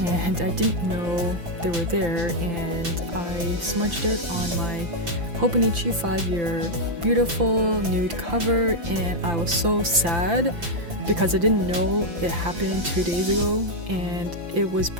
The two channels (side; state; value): left; late; 5.9 ms